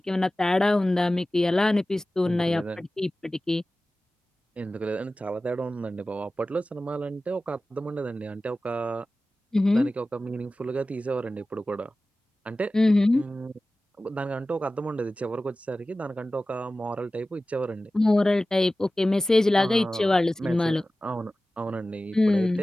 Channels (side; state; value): both; normal; correlation 0.96